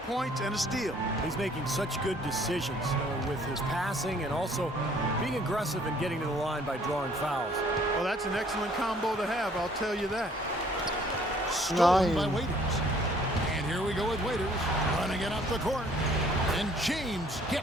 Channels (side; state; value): both; normal; correlation 0.59